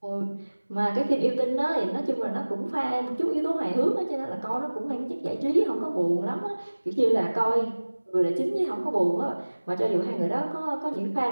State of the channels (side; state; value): both; inverted; correlation -1.00